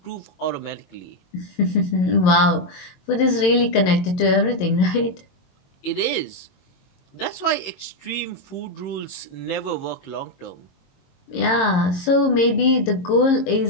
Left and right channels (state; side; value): late; right; 22 ms